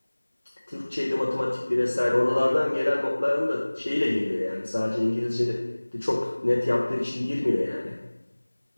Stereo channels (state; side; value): inverted; both; correlation -1.00